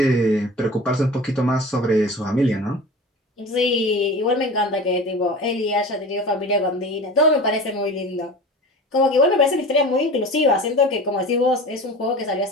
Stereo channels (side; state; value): both; normal; correlation 0.35